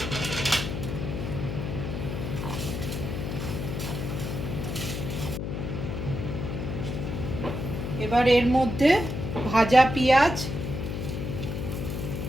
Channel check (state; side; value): noise; left; hum, 4 dB below the sound